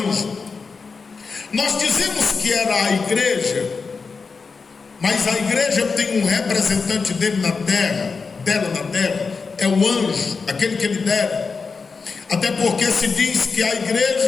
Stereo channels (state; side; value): quieter; right; 4.8 dB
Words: Nós dizemos que era a igreja, mas a igreja tem um representante dele na terra, dela na terra, é o anjo, aquele que ele dera. Até porque se diz que a